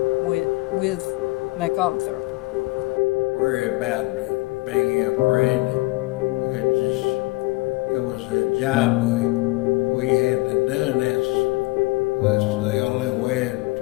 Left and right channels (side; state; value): right; quieter; 23.6 dB